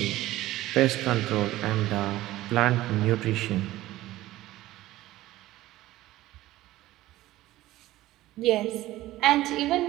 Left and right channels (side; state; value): left; quieter; 16.1 dB